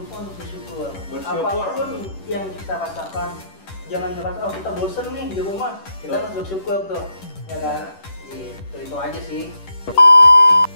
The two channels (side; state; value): right; late; 10 ms